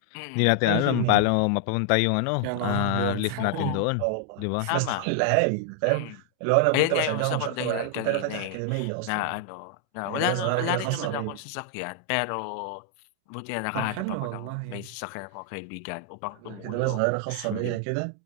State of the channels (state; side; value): different; both; correlation 0.00